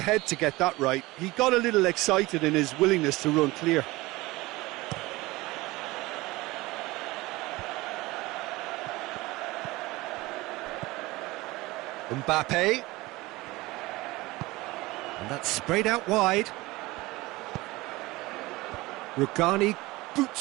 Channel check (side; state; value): left; quieter; 20.7 dB